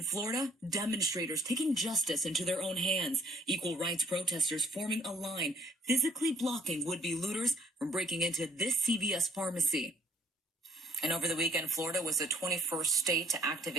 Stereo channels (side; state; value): both; normal; correlation 0.62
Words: Florida, demonstrators taking justice into their own hands. Equal rights protesters forming a line, physically blocking would-be looters from breaking into this CVS pharmacy. And over the weekend, Florida was the 21st state to